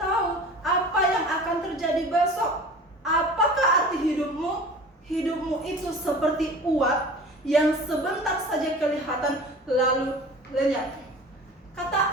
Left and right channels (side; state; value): both; normal; correlation 0.40